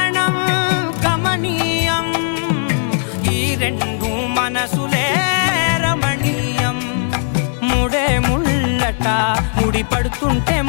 గమనీయం ఈ రెండు మనసులే రమణీయం ముడే ముళ్ళట ముడి పడుతుంటే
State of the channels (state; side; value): silent; right; digital silence